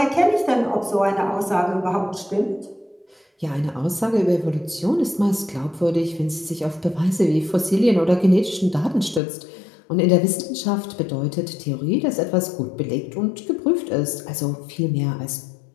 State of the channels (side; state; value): right; drops out; at 9.2 s